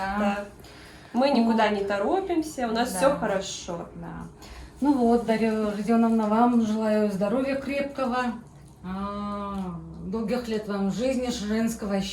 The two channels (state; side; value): identical; both; correlation 1.00